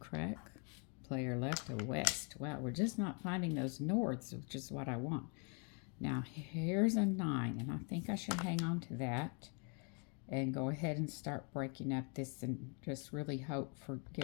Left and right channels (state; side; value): quieter; right; 37.2 dB